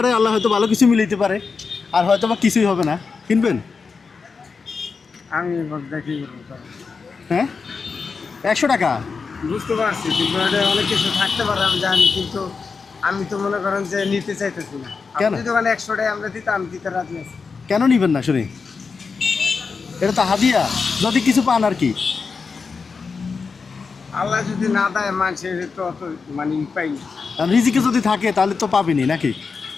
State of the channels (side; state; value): right; quieter; 5.0 dB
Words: আল্লাহ হয়তো ভালো কিছু মিলাইতে পারে, আর হয়তো বা কিছুই হবে না। কিনবেন? আমি দেখি করবো। হ্যাঁ, 100 টাকা। বুঝতে পারছি, কিন্তু এটা অনেক কিছু থাকতে পারে আমি জানি, কিন্তু আমি তো মনে করেন যে নিতে চাইতেছি না। কেন? আপনি দোকানে 100 টাকা আমরা দিতে, আমি দিতে রাজি আছি। কেন নিবেন না শুনি? এটা তো হাদিয়া, যদি কিছু পান আর কি। আল্লাহ যদি না দেয় মানুষের তো অত মানে পাই না। আর রিজিকে যদি থাকে তাহলে তো পাবেনি নাকি?